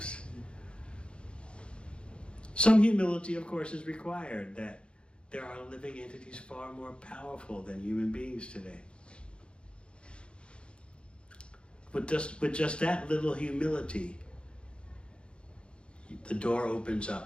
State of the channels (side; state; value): right; late; 0.056 ms